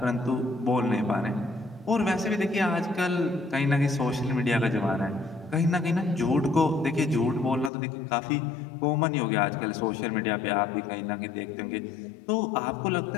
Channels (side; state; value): right; drops out; at 7.7 s